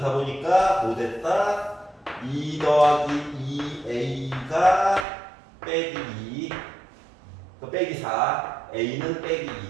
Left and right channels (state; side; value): drops out; left; at 5.1 s